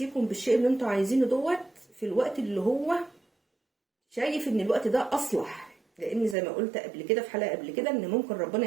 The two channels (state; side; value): drops out; left; at 6.4 s